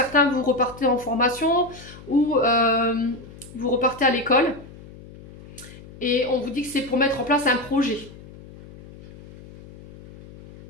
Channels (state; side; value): noise; left; hum, 19 dB below the sound